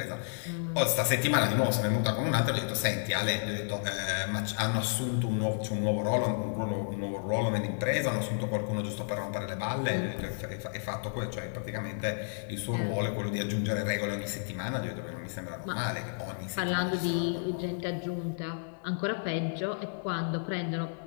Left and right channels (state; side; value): silent; right; 57 dB below the other